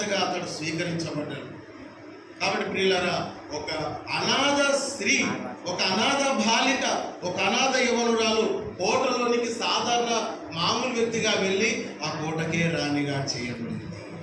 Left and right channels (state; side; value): identical; both; correlation 1.00